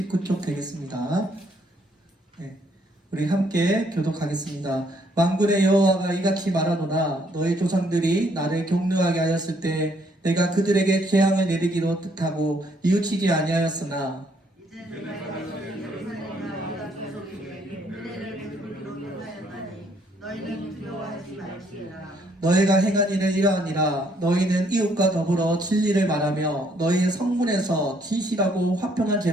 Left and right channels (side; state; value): both; normal; correlation 0.68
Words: 되겠습니다. 네, 우리 함께 교독하겠습니다. 만군의 여호와가 이같이 말하노라. 너희 조상들이 나를 경노하게 하였을 때 내가 그들에게 재앙을 내리기로 뜻하고 뉘우치지 아니하였으나 너희는 두려워하지 말지어다. 너희가 행한 일은 이러하니라. 너희는 이웃과 더불어 진리를 말하며 너희의 성문에서 진실하고 화평한